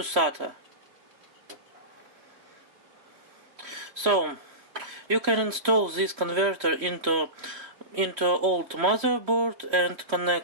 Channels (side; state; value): left; late; 3.1 ms